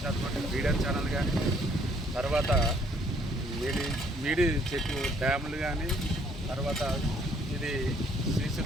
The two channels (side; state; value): both; normal; correlation 0.64